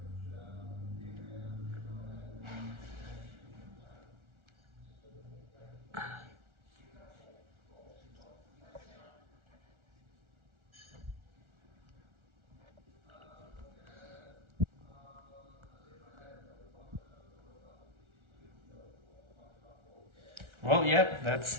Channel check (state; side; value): late; left; 1.4 ms